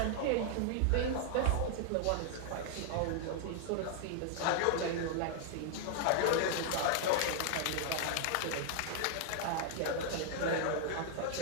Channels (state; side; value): different; both; correlation -0.01